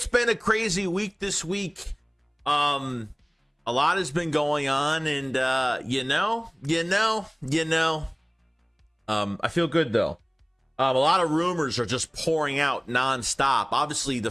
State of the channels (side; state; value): both; identical; correlation 1.00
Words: been a crazy week this week. A lot has been going on, and I feel good though. A lot of rumors are just pouring out nonstop. Obviously, the